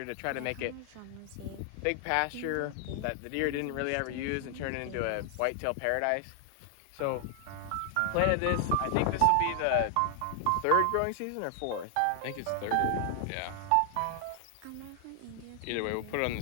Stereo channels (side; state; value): both; different; correlation 0.00